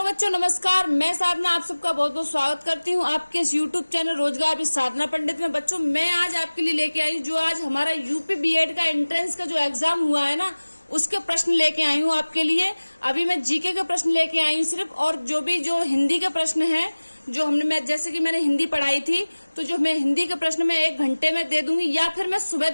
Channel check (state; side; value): inverted; both; correlation -1.00